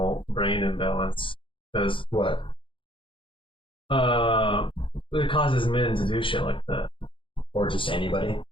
brain imbalance, because What? it causes men to do shit like that. Or just anybody?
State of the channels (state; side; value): late; right; 0.25 ms